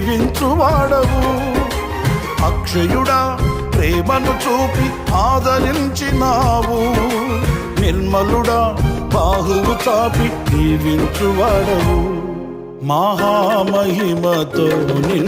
అక్షయుడా ప్రేమను చూపి ఆదరించినావు. నిర్మలుడా బాహువు చాపి దీవించువాడవు. మహామహిమతో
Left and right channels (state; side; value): identical; both; correlation 1.00